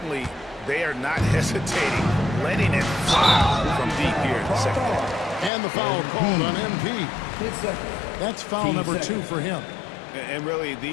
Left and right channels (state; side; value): drops out; right; at 5.5 s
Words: they are not hesitating, letting it fly from deep here in the second half. And the foul called on MP. That's foul number 2 for him. And really,